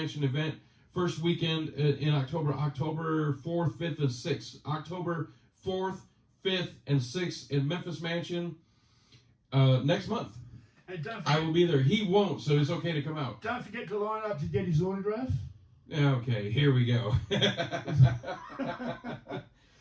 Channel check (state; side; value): identical; both; correlation 1.00